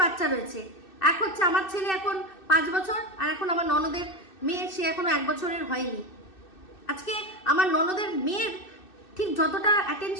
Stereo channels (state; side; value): late; right; 2.6 ms